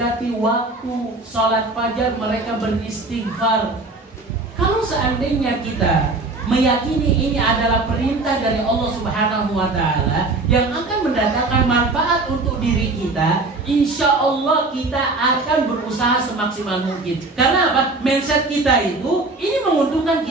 waktu salat fajar, mereka beristighfar. Kalau seandainya kita meyakini ini adalah perintah dari Allah Subhanahu wa taala yang akan mendatangkan manfaat untuk diri kita, insya Allah kita akan berusaha semaksimal mungkin. Karena apa? Mindset kita itu ini menguntungkan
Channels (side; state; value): left; quieter; 3.3 dB